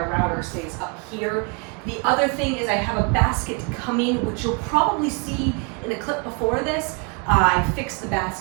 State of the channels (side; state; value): left; quieter; 33.8 dB